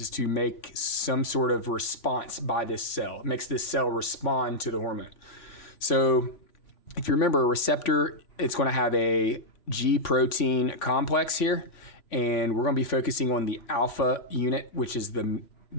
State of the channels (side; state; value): right; late; 3.5 ms